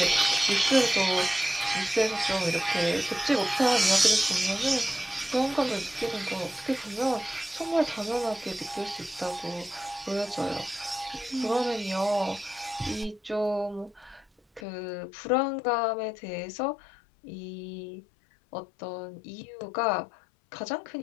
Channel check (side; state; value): right; drops out; at 14.7 s